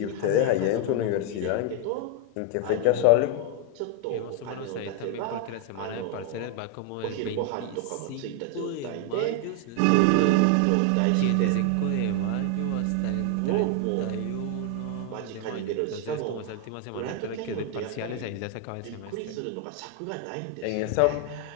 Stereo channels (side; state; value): both; different; correlation 0.00